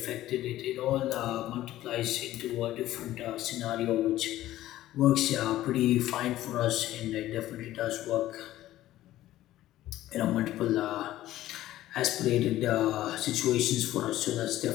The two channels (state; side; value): quieter; right; 14.6 dB